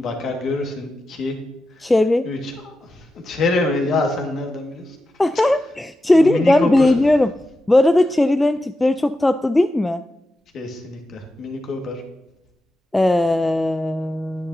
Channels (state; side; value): normal; both; correlation 0.91